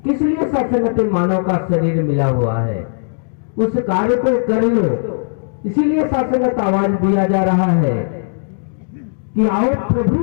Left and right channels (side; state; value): right; silent; digital silence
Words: किस लिए सत्संगत मानव का शरीर मिला हुआ है? उस कार्य को कर लो, इसीलिए सत्संगत आवाज दिया जा रहा है कि आओ